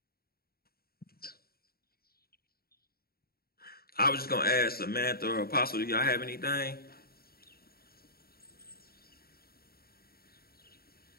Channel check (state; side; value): late; right; 0.44 ms